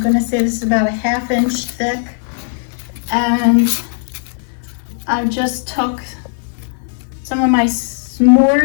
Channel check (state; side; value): silent; right; 67 dB below the other